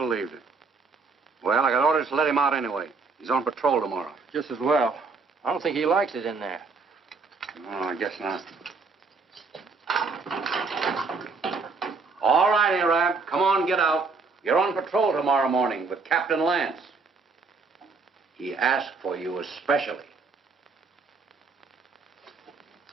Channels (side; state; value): left; quieter; 4.4 dB